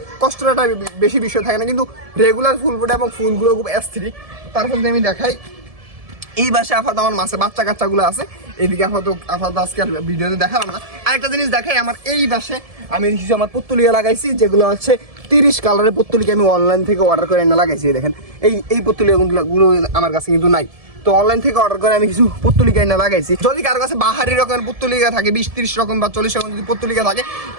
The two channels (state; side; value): late; left; 1.7 ms